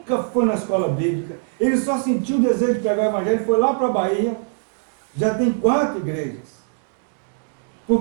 foi na escola bíblica. Ele só sentiu o desejo de pregar o evangelho, foi lá para a Bahia. Já tem 4 igrejas.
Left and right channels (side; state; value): left; silent; digital silence